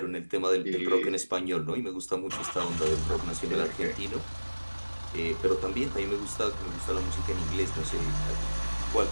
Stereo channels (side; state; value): both; inverted; correlation -1.00